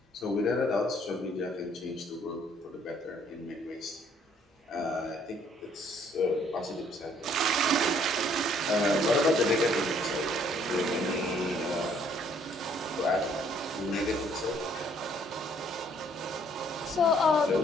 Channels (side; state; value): both; normal; correlation 0.64